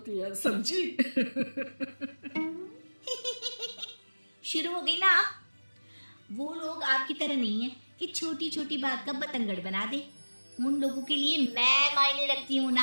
है, समझी? शुरू हो गई ना आप? वो लोग आपकी तरह नहीं है कि छोटी छोटी बात का बतंगड़ बना दे। उन लोगों के लिए मैं मायने रखती हूँ,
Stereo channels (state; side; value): inverted; both; correlation -1.00